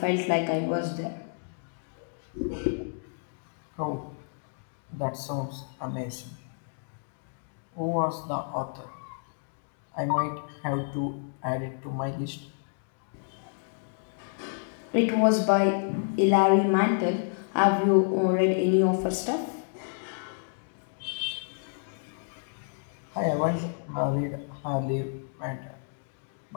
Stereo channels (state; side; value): silent; right; digital silence